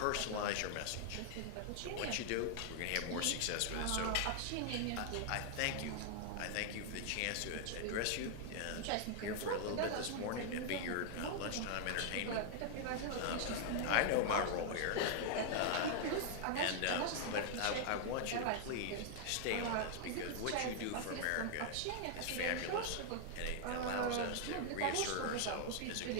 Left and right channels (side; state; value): both; different; correlation 0.00